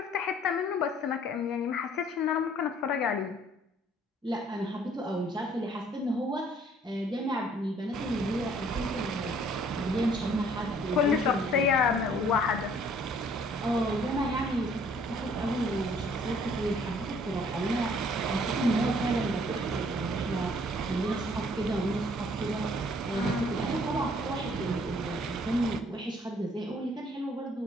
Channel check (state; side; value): normal; both; correlation 0.59